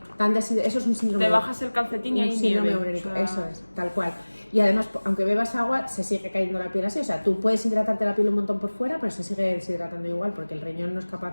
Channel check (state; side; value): inverted; both; correlation -1.00